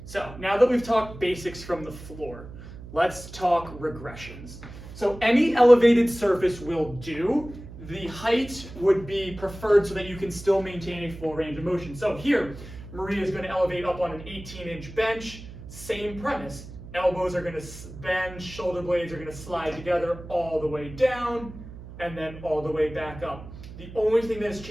So now that we've talked basics from the floor, let's talk regressions. So any elevated surface will do. The height would be preferred so that you can still maintain a full range of motion. So here, Maria is going to elevate up on an 18-inch bench. Same premise. Elbows are going to bend, shoulder blades are going to slide together all the way down, and then all the way back up. The only thing that has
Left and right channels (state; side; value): noise; right; hum, 14 dB below the sound